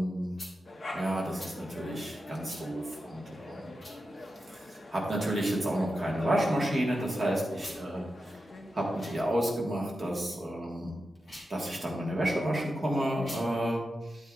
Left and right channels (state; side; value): normal; both; correlation 0.90